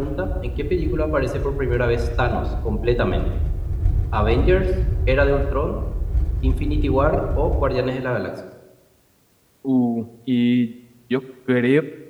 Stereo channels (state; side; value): identical; both; correlation 1.00